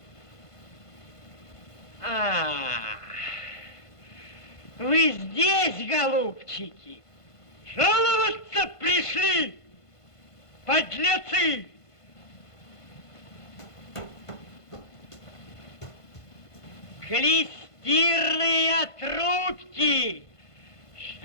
Вы здесь, голубчики? Жаловаться пришли, подлецы! Клестирные трубки!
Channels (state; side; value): late; right; 1.5 ms